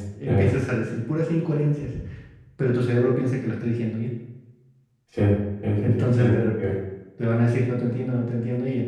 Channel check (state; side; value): identical; both; correlation 1.00